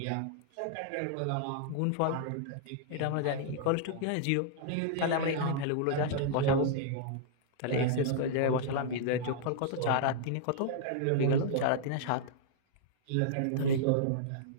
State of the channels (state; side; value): different; both; correlation -0.01